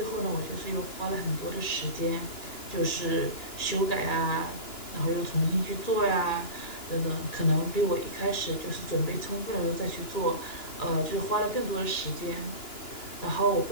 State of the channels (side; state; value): right; late; 2.9 ms